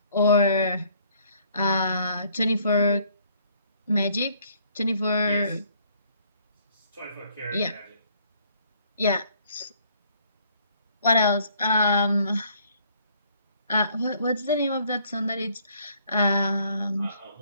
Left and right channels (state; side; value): inverted; both; correlation -0.63